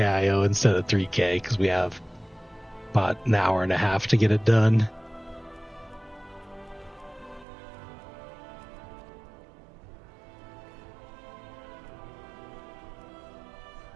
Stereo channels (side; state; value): left; drops out; at 7.5 s